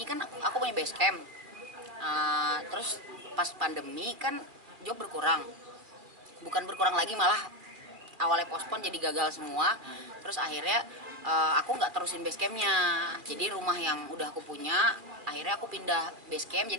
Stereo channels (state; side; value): late; left; 2.3 ms